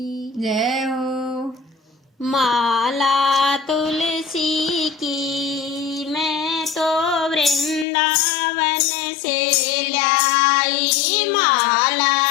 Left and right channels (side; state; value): right; drops out; at 7.9 s